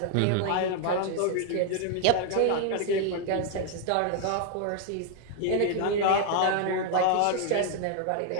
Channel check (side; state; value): both; different; correlation 0.00